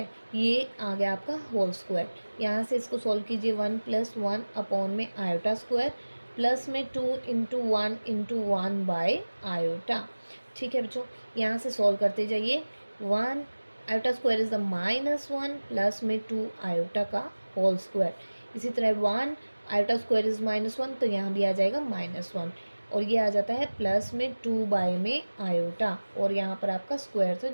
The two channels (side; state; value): both; inverted; correlation -1.00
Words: ये आ गया आपका होल स्क्वायर। यहाँ से इसको सॉल्व कीजिए 1 प्लस 1 अपॉन में आयोटा स्क्वायर प्लस में 2 इंटू 1 इंटू 1 बाय आयोटा। ठीक है बच्चों, यहाँ से सॉल्व करते जाइए। 1 iota square is the -1 plus में 2 आयोटा का होल स्क्वायर। इसी तरह 1 आयोटा स्क्वायर इज -1, तो यहाँ भी आ जाएगा -1 और ये आ जाता है प्लस में 2 बाय में आयोटा, और यहाँ पर आपका स्क्वायर था